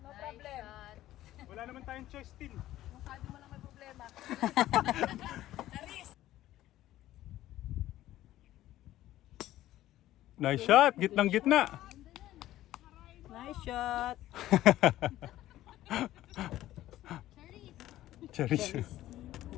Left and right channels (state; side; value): quieter; right; 14.4 dB